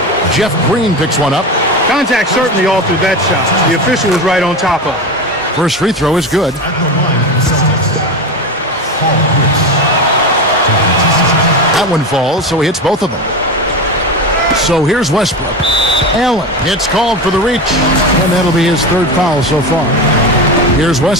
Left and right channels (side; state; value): both; normal; correlation 0.22